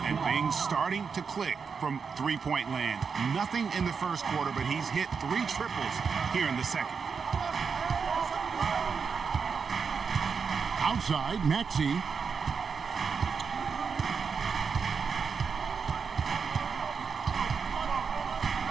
And things starting to click from three-point land. Nothing in the first quarter, but he's hit 3 triples here in the second. Outside, Maxey.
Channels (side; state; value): left; quieter; 5.8 dB